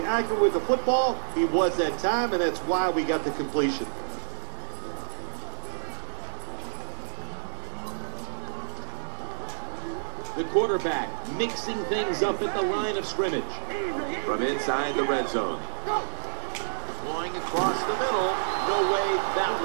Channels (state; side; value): silent; left; 58 dB below the other